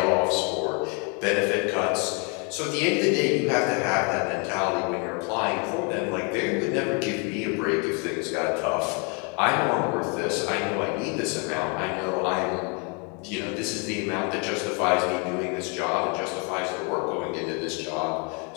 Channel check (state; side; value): quieter; right; 33.9 dB